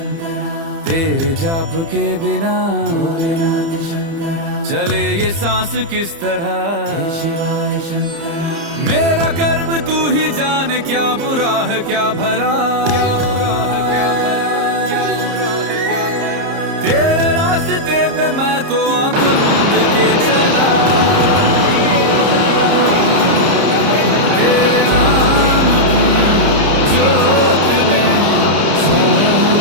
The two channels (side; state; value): left; late; 30 ms